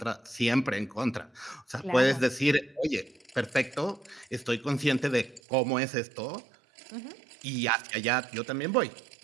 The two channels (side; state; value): left; drops out; at 5.4 s